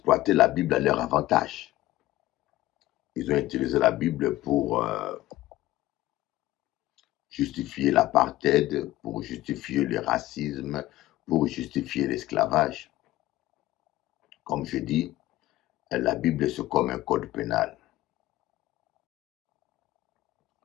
la Bible à leur avantage. Ils ont utilisé la Bible pour justifier l'apartheid, pour justifier le racisme, pour justifier l'esclavage. Comme je dis, la Bible c'est comme un code pénal.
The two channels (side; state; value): right; quieter; 16.2 dB